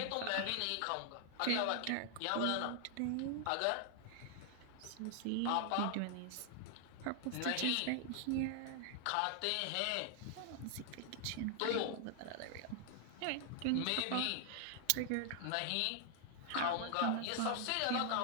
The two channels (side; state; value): both; different; correlation 0.00